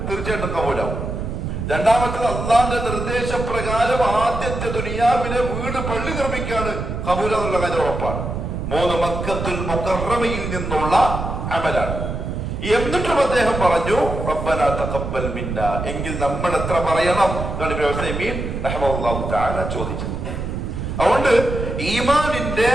തീർച്ചയായിട്ടും കബൂലാവും. രണ്ടാമത്തത് അള്ളാന്റെ നിർദ്ദേശപ്രകാരം ആദ്യത്തെ ദുനിയാവിലെ വീട് പള്ളി നിർമ്മിക്കാണ് കബൂല എന്നുള്ള കാര്യം ഉറപ്പാണ്. മൂന്ന് മക്കത്തുൽ മുകറമയിൽ നിന്നുള്ള അമലാണ്. എന്നിട്ടും അദ്ദേഹം പറഞ്ഞു റബ്ബനാ തഖബ്ബൽ മിന്ന, എങ്കിൽ നമ്മൾ എത്ര പറയണം റഹ്മത്തുള്ളാഹി തആല ചോദിച്ചത്. അതുകൊണ്ട് ഈമാനിന്റെ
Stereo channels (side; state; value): right; noise; rumble, 4 dB below the sound